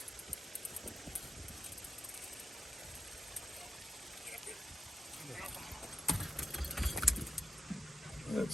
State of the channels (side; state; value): both; normal; correlation 0.88